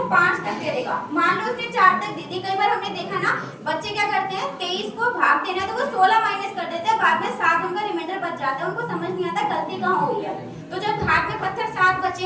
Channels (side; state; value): both; identical; correlation 1.00